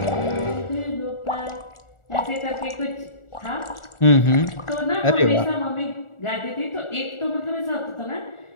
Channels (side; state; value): right; late; 1.4 ms